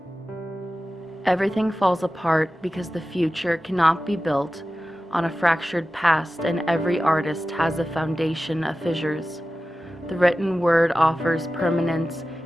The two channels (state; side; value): normal; both; correlation 0.94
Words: Everything falls apart because the future cannot be built on a fractured past, and every artist has a foundation of fissures. The written word offers permanence